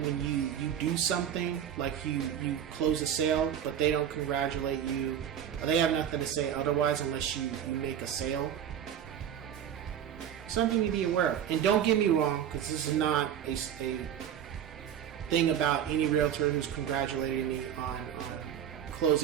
when you do something, like you close a sale, but they don't congratulate you, or they have nothing to say otherwise unless you make a sale, something to be aware of. And don't get me wrong, because this is not a thing about any realtor who's congratulating me on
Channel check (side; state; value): left; quieter; 9.5 dB